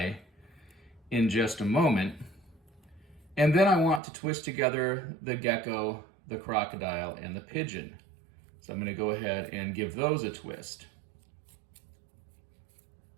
in just a moment. And then I want to twist together the gecko, the crocodile, and the pigeon. So I'm going to go ahead and give those a twist.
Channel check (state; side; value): drops out; left; at 4.0 s